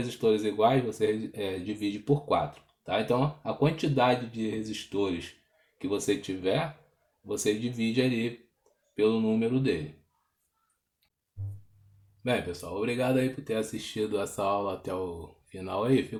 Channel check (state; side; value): identical; both; correlation 1.00